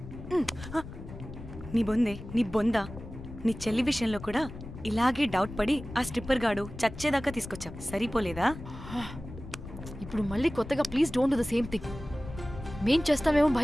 నీ బొందే, నీ బొందా, నీ చెల్లి విషయంలో కూడా ఇలాగే డౌట్ పడి ఆ స్ట్రిప్పర్ గాడు చచ్చేదాకా తీసుకొచ్చాం. సరిపోలేదా? ఇప్పుడు మళ్ళీ కొత్తగా please don't do the same thing. మేం చేస్తామేమో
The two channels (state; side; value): noise; left; rumble, 12 dB below the sound